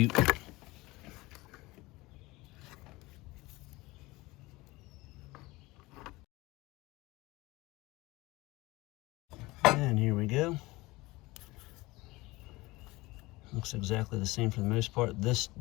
And here we go. Looks exactly the same for the most part. This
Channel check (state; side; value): quieter; right; 21.1 dB